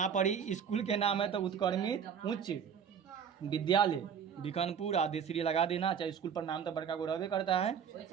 पर ही स्कूल के नाम है तो उत्क्रमित उच्च विद्यालय बीकानपुर आदेश्री लगा देना, चाहे स्कूल पर नाम तो बड़का को रहबे करता है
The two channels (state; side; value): quieter; left; 7.5 dB